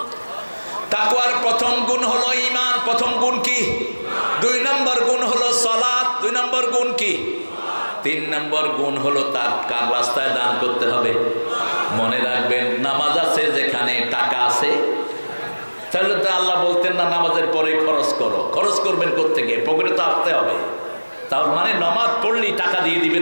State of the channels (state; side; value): inverted; both; correlation -1.00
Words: তাকওয়ার প্রথম গুণ হলো ঈমান। প্রথম গুণ কি? 2 নম্বর গুণ হলো সালাত। 2 নম্বর গুণ কি? 3 নম্বর গুণ হলো তার কার রাস্তায় দান করতে হবে। মনে রাখবেন, নামাজ আছে যেখানে টাকা আছে, তাহলে তো আল্লাহ বলতেন না নামাজের পরে খরচ করো। খরচ করবেন কোত্থেকে? পকেটে তো আসতে হবে। তার মানে নামাজ পড়লেই টাকা দিয়ে